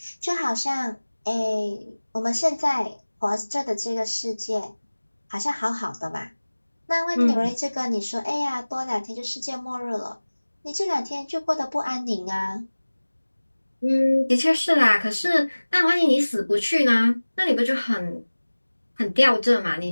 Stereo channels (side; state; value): both; inverted; correlation -1.00